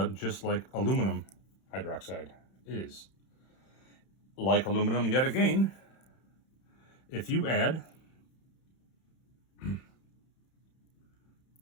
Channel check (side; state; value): right; late; 31 ms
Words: just like aluminum hydroxide is. Like aluminum, yet again, if you add